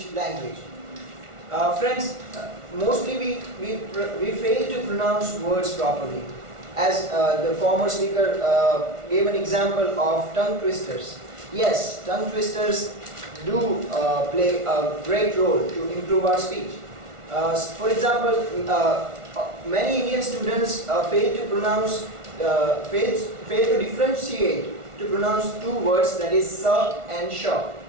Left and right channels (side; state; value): left; late; 1.4 ms